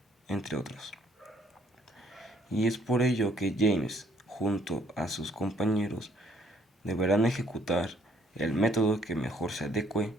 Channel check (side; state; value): both; normal; correlation 0.64